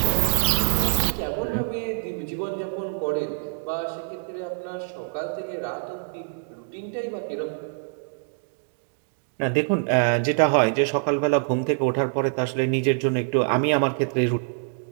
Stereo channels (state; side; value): silent; left; digital silence